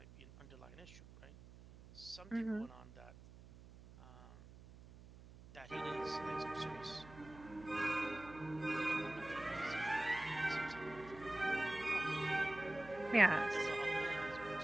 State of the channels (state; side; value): noise; right; hum, 18 dB below the sound